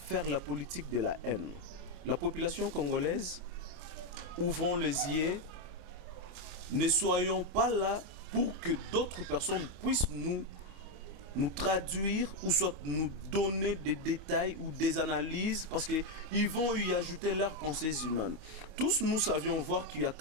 la politique de la haine, la population congolaise, ouvrons les yeux, ne soyons pas là pour que d'autres personnes puissent nous traduire ou soit nous donner des détails ou des analyses parce qu'ils vont y ajouter leurs pensées humaines. Tous nous savions voir qu'il y a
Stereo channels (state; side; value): late; left; 28 ms